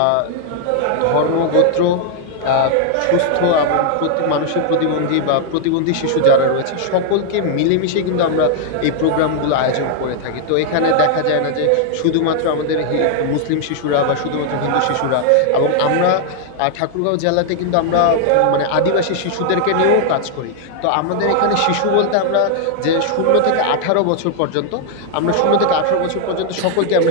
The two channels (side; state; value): both; different; correlation 0.00